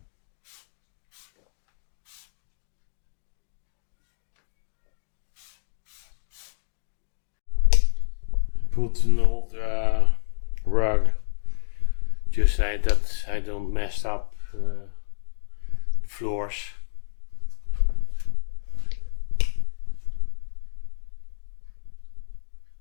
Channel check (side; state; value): right; silent; digital silence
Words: Put an old rug just like that I don't mess up the floors.